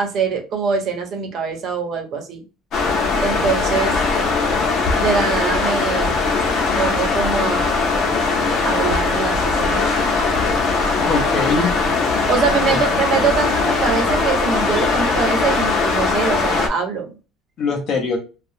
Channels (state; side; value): normal; both; correlation 0.53